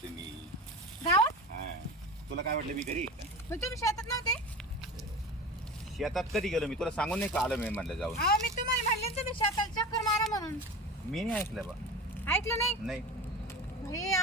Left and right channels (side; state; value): both; normal; correlation 0.31